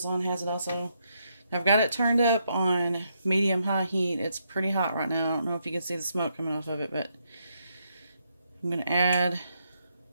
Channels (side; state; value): both; inverted; correlation -0.78